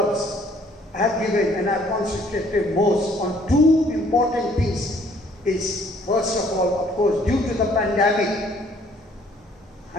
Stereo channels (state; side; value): normal; both; correlation 0.61